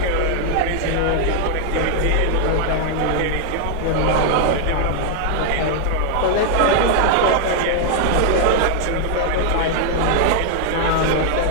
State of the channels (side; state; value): both; different; correlation 0.00